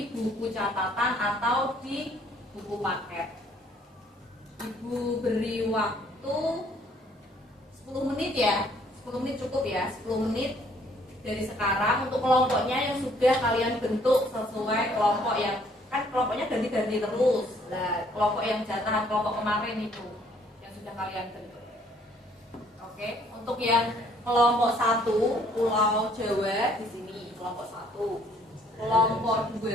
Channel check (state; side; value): normal; both; correlation 0.62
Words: buku catatan atau di buku paket. Ibu beri waktu 10 menit ya. 10 menit cukup ya, 10 menit dari sekarang untuk kelompoknya yang sudah kalian bentuk sesuai kelompok yang kan kelompoknya ganti-ganti terus. Nah, kelompok yang jatahan kelompok kemarin itu yang sudah kalian bentuk. Oke, untuk yang kelompok 1 Pulau Jawa di sini kelompok 1, kelompok